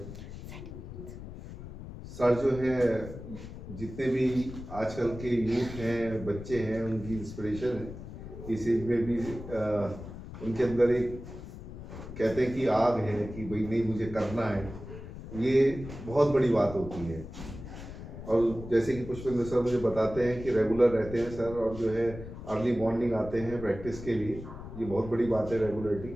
सर जो है जितने भी आजकल के यूथ हैं, बच्चे हैं, उनकी इंस्पिरेशन है। इस एज में भी उनके अंदर एक कहते हैं कि आग है कि भाई नहीं मुझे करना है, ये बहुत बड़ी बात होती है। और जैसे कि पुष्पेंद्र सर मुझे बताते हैं कि रेगुलर रहते हैं सर और जो है अर्ली मॉर्निंग आते हैं प्रैक्टिस के लिए, ये बहुत बड़ी बात है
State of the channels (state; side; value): noise; left; rumble, 12 dB below the sound